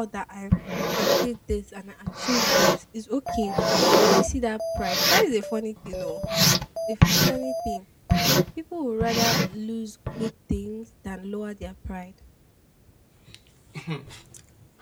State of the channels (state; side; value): identical; both; correlation 1.00